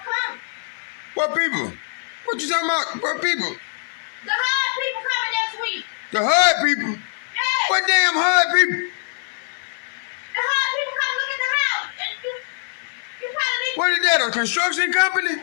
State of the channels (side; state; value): right; silent; 55 dB below the other